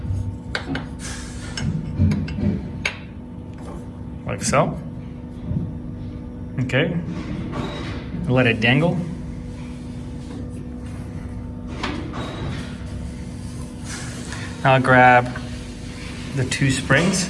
Like so. Okay. Let it dangle. Now grab the two springs.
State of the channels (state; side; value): identical; both; correlation 1.00